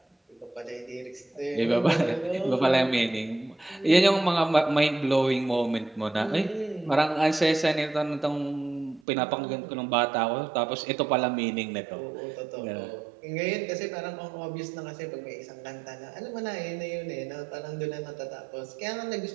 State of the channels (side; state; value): left; drops out; at 9.0 s